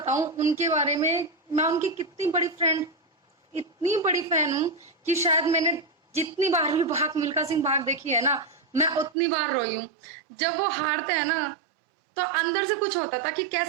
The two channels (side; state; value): left; drops out; at 9.2 s